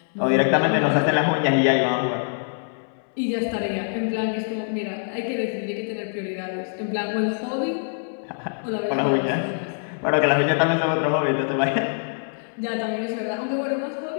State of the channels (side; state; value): right; silent; 62 dB below the other